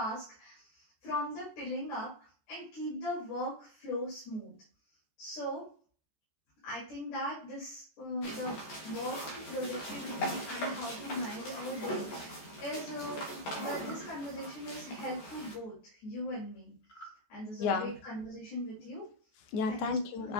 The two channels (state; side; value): late; right; 14 ms